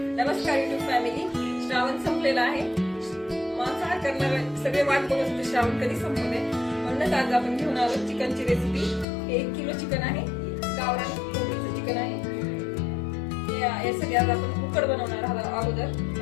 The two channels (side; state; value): right; drops out; at 9.1 s